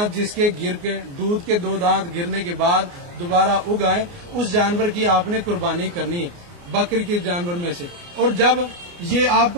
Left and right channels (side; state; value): left; late; 29 ms